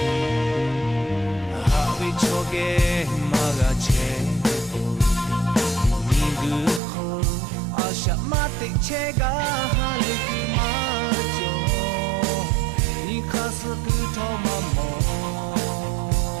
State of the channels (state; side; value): drops out; left; at 6.8 s